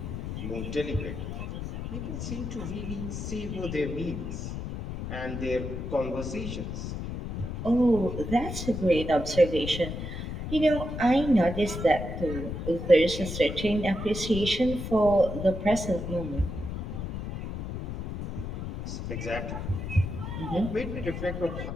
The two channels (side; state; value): left; noise; rumble, 6 dB below the sound